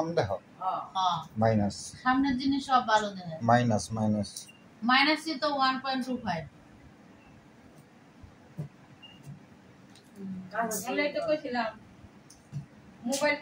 দেহ হ্যাঁ মাইনাস সামনের জিনিস সব ভালো দেখায়। মাইনাস মাইনাসই তো 1.25। আমি তো কইছিলাম মোবাইল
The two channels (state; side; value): identical; both; correlation 1.00